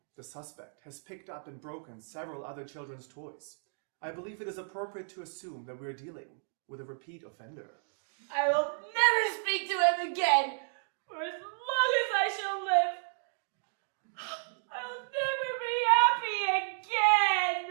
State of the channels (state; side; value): silent; left; digital silence